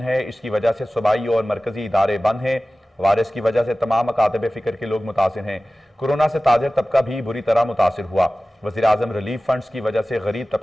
है, इसकी वजह से सूबाई और मरकजी इदारे बंद हैं। वायरस की वजह से तमाम अकातब फिक्र के लोग मुतासिर हैं। कोरोना से ताजर तबका भी बुरी तरह मुतासिर हुआ। वज़ीर आज़म रिलीफ फंड्स की वजह से गरीब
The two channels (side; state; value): both; normal; correlation 0.96